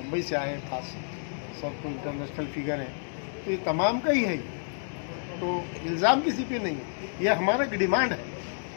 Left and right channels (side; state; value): right; silent; digital silence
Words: से आए हैं, खास सब तो इंटरनेशनल फिगर हैं, तो ये तमाम का ही है। तो इल्ज़ाम किसी पे नहीं है, ये हमारा एक डिमांड है